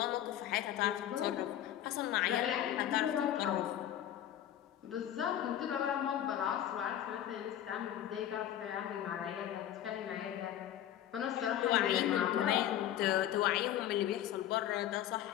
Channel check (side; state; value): right; quieter; 11.5 dB